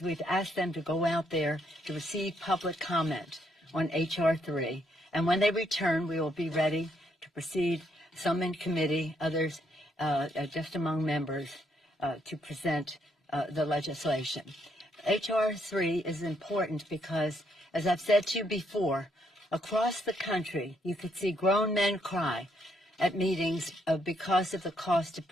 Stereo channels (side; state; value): both; normal; correlation 0.73